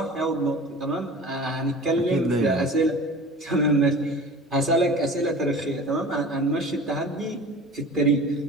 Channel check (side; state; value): both; normal; correlation 0.38